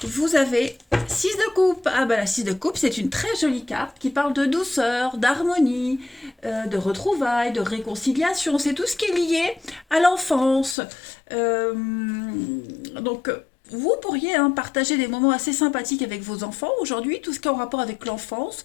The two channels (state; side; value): drops out; right; at 10.8 s